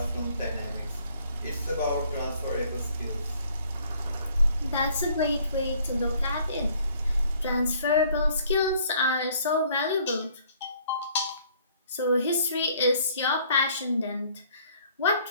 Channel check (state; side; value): inverted; both; correlation -0.60